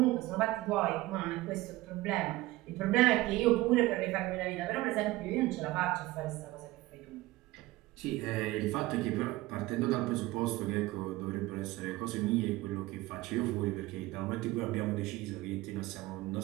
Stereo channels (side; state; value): left; quieter; 18.6 dB